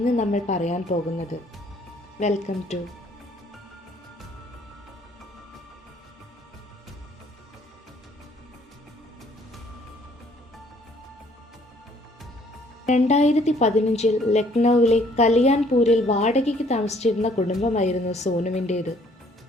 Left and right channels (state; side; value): normal; both; correlation 0.62